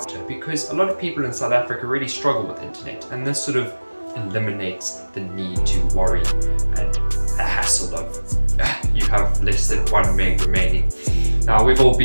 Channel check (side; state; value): both; inverted; correlation -1.00